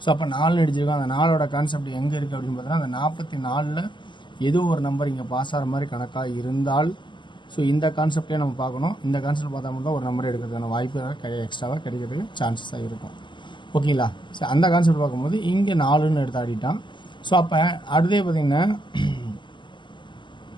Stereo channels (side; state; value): right; late; 0.23 ms